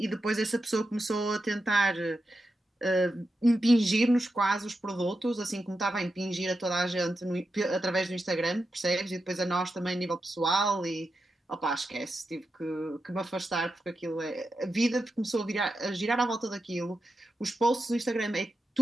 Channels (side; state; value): both; normal; correlation 0.89